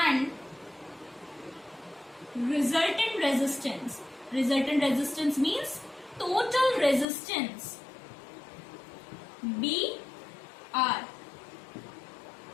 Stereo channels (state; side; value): drops out; right; at 7.1 s